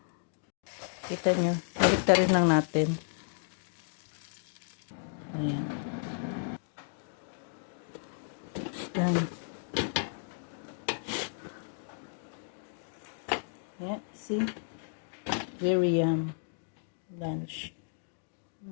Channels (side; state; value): right; silent; digital silence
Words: Kita nyo. Balik rin lang natin. Ayan. Ayan. Yeah, see? Very lunch.